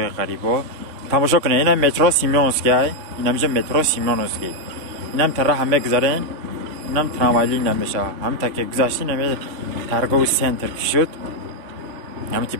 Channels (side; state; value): left; late; 3.5 ms